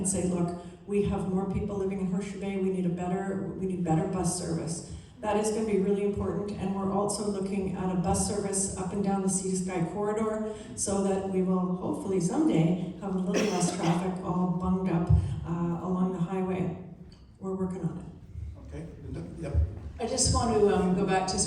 say, look, we have more people living in Horseshoe Bay, we need better bus service. That is going to be really important, and we're also looking at a bus service up and down the Sea to Sky corridor so that we will hopefully someday have a little less traffic all bunged up along the highway. We're working on it. Okay. Yep. I just want to go back to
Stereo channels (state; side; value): identical; both; correlation 1.00